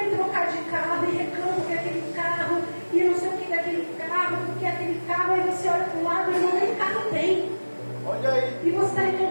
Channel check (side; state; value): both; inverted; correlation -1.00